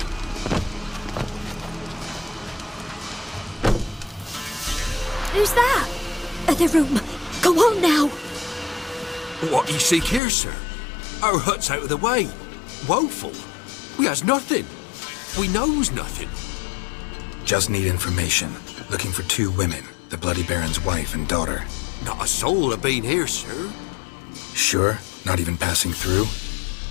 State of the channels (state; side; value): drops out; right; at 10.2 s